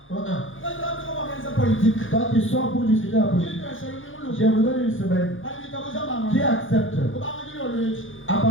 Toi tu sors pour discuter la politique. Je vous donne une semaine. Qui accepte? À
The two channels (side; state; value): right; late; 0.58 ms